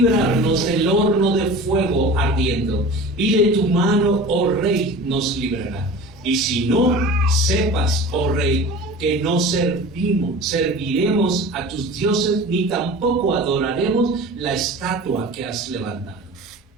del horno de fuego ardiendo, y de tu mano, oh rey, nos librará. Y si no, sepas, oh rey, que no serviremos a tus dioses, ni tampoco adoraremos la estatua que has levantado.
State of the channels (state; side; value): normal; both; correlation 0.37